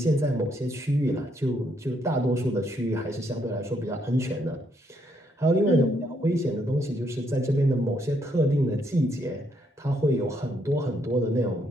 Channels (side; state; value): both; normal; correlation 0.73